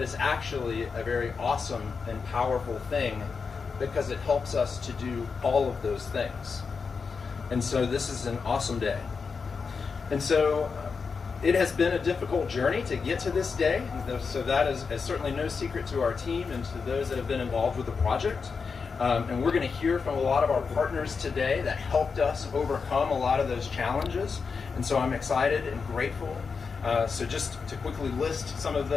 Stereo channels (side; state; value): right; quieter; 5.2 dB